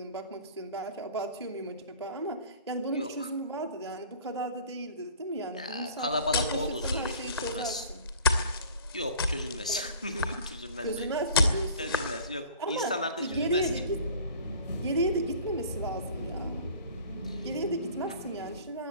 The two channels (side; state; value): both; inverted; correlation -0.47